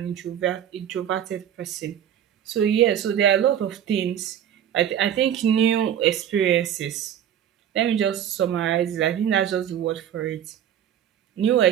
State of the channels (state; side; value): quieter; left; 9.8 dB